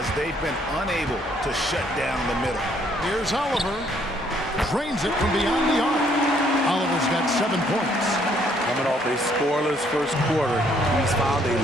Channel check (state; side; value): normal; both; correlation 0.66